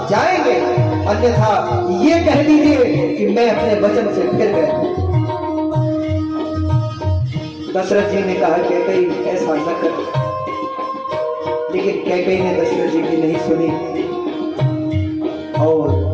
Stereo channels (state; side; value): identical; both; correlation 1.00